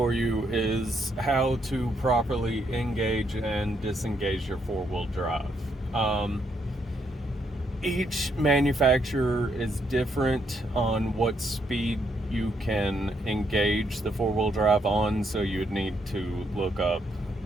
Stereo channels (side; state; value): both; normal; correlation 0.75